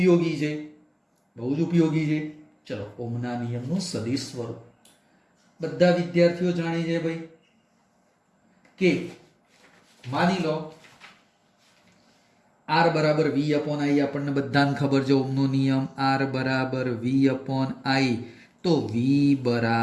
છે. ચલો, ઓમના નિયમનું સદિશ સ્વરૂપ બધા વિદ્યાર્થીઓ જાણે છે ભાઈ. કે માની લો R બરાબર V અપોન I. આપણને બધાને ખબર છે ઓમનો નિયમ. R બરાબર V અપોન I. તો V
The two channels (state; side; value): identical; both; correlation 1.00